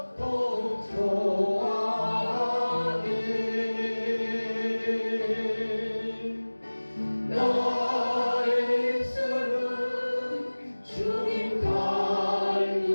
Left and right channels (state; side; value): inverted; both; correlation -1.00